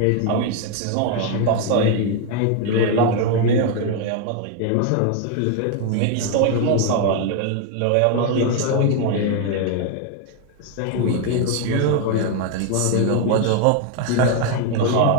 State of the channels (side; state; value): both; different; correlation 0.00